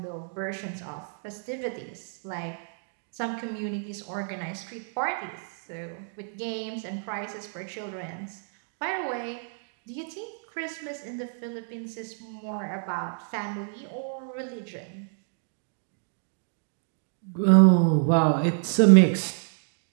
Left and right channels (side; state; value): left; silent; digital silence